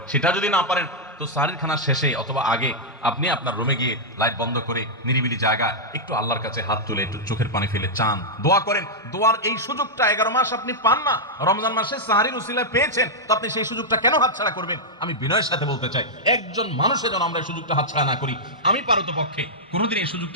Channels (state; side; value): normal; both; correlation -0.06